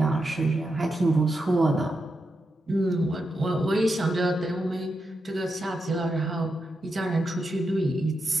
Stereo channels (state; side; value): normal; both; correlation 0.86